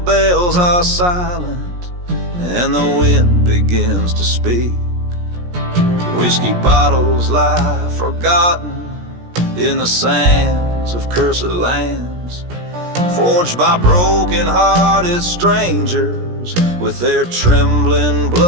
are silent and the wind begins to speak. Whiskey bottles lie forgotten in the sands of cursed lands, forged by broken-hearted strangers with their trembling,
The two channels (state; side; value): late; left; 17 ms